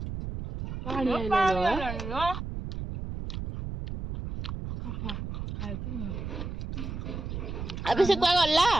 पानी आइलो अबे से कोई गल्ला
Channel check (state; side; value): noise; right; rumble, 6 dB below the sound